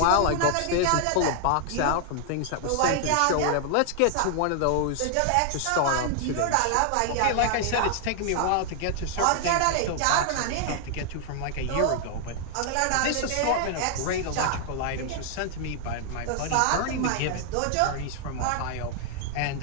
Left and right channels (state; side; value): different; both; correlation 0.00